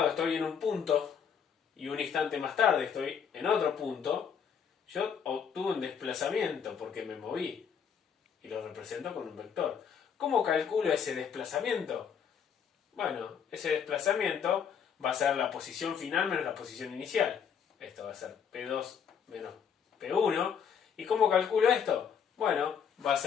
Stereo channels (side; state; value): right; quieter; 7.4 dB